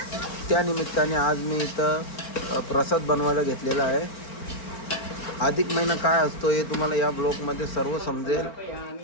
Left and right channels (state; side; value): late; right; 4.4 ms